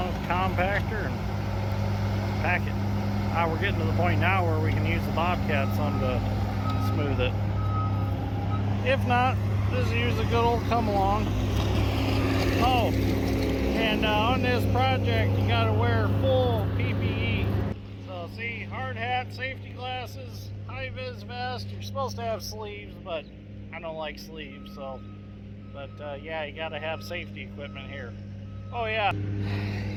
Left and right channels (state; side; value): identical; both; correlation 1.00